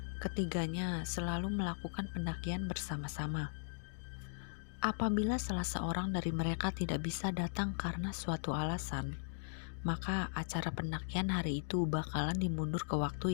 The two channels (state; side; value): silent; right; digital silence